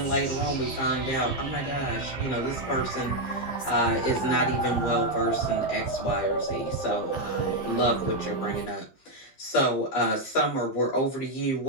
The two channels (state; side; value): late; right; 15 ms